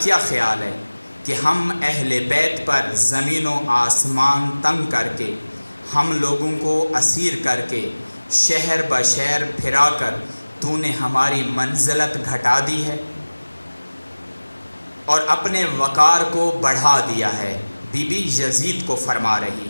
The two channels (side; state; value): both; inverted; correlation -1.00